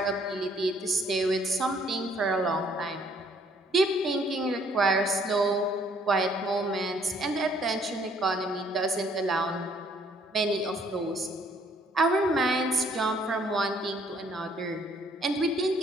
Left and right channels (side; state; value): both; normal; correlation 0.63